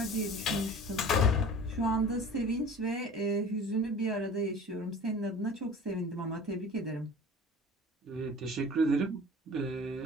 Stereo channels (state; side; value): normal; both; correlation 0.41